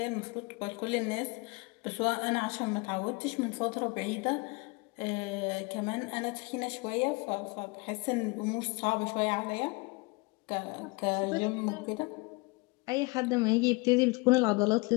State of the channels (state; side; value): quieter; right; 27.3 dB